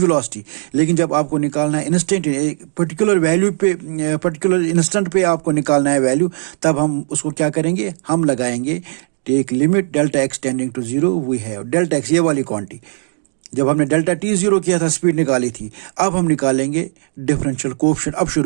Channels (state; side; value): silent; left; digital silence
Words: लेकिन जब आपको निकालना है इंस्टेंट, पर्टिकुलर वैल्यू पे, पर्टिकुलर इंस्टेंट पे आपको निकालना है वैल्यू, तब हम उसको क्या करेंगे, हम लगाएंगे take limit delta x tending to zero, we have delta x, ये वाली क्वांटिटी। जब हमने डेल्टा टी जीरो किया था, स्पीड निकाली थी, अब हम निकालेंगे डिफरेंशियल कोएफिशिएंट। अब